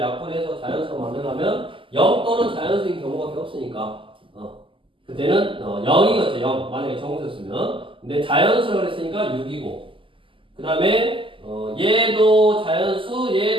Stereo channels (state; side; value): late; left; 0.25 ms